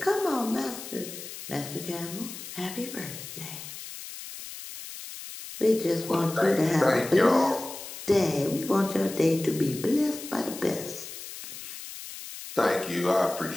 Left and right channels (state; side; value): noise; left; hiss, 11 dB below the sound